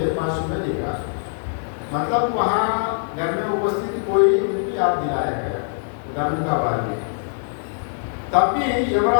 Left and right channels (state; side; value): silent; right; 60 dB below the other